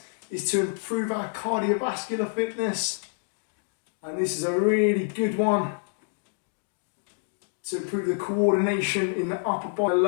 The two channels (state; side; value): silent; right; digital silence